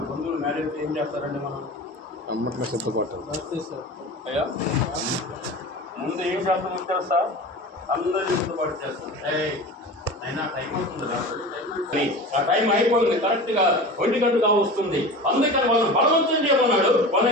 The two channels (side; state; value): both; normal; correlation 0.33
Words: బంధువులు మ్యారేజ్ అయితే ఏం చేస్తారండి? మనం అమ్మట్లో సిద్ధపాటు అయ్యా ముందు ఏం చేస్తామో తెలుసా? అందరూ సిద్ధపాటు చేస్తాం. అయినా టైం అవుతుంది, ఆ టైం అయిపోయింది, కరెక్ట్ గా 1 గంటగా వస్తుంది. అందుకని వాళ్ళని బలవంతం చేయమన్నాడు,